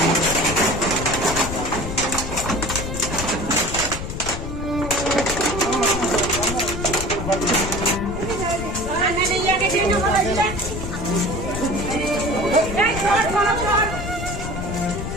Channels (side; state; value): left; noise; rumble, 6 dB below the sound